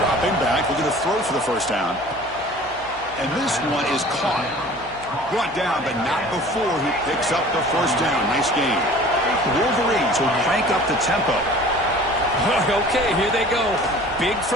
back, looking to throw for the 1st down. And this one is caught. Brought down, but not before he picks up the 1st down. Nice game. The Wolverines will crank up the tempo. Okay, here they go. Big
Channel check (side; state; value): left; noise; hum, 22 dB below the sound